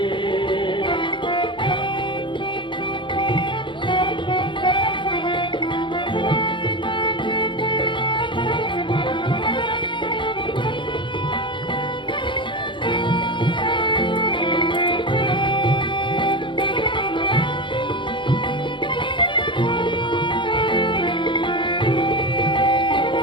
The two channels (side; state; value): right; late; 0.24 ms